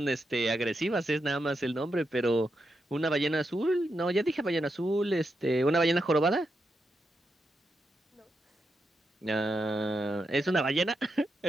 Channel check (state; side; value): normal; both; correlation 0.85